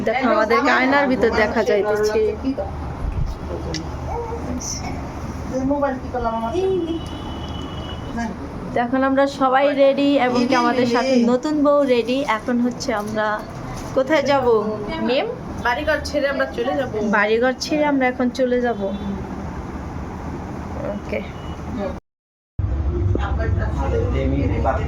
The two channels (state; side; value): identical; both; correlation 1.00